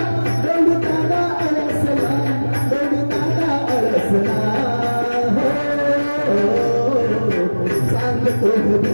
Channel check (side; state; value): both; inverted; correlation -1.00